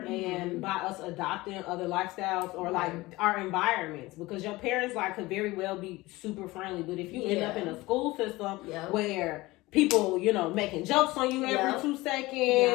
and by us adopting other lifestyles, or like our environments, because your parents like could very well be super friendly, but if you end up in a school system where people, you know, making jokes on you every 2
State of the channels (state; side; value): quieter; right; 20.2 dB